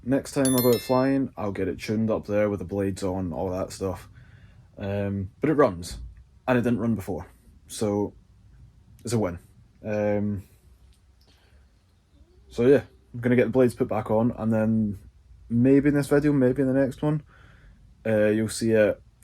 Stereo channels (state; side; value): identical; both; correlation 1.00